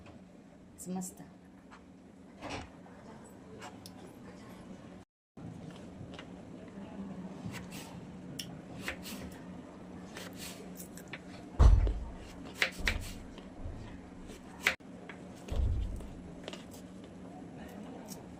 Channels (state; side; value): identical; both; correlation 1.00